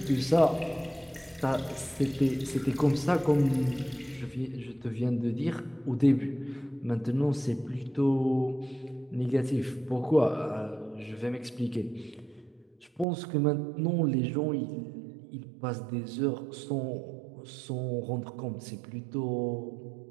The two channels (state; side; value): drops out; left; at 13.1 s